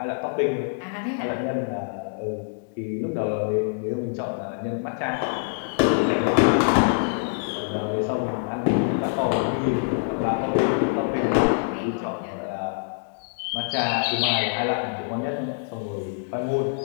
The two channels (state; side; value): silent; right; 62 dB below the other